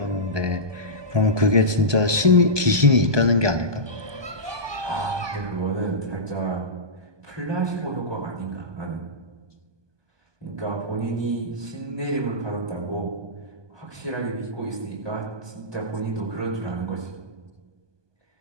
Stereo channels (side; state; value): left; late; 1.2 ms